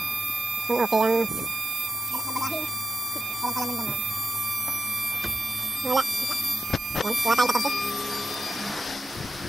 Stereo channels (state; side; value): normal; both; correlation 0.89